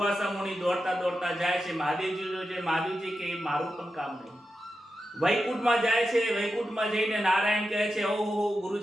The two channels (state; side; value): normal; both; correlation 0.90